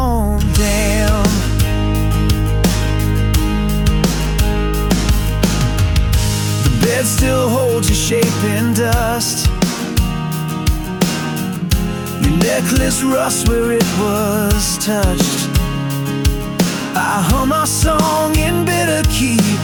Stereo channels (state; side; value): identical; both; correlation 1.00